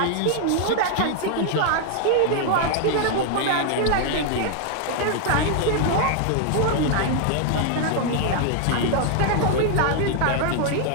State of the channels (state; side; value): different; both; correlation 0.00